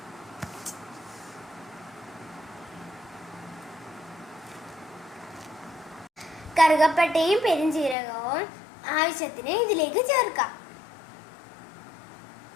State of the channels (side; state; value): right; drops out; at 8.0 s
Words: കറുകപ്പട്ടയും പെരുംജീരകവും ആവശ്യത്തിന് ഇതിലേക്ക് ചേർക്കാം.